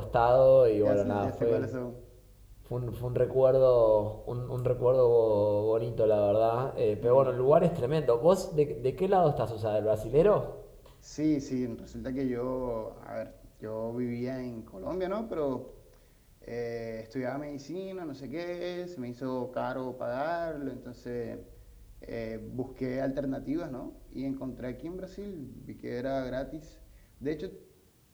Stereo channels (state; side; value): identical; both; correlation 1.00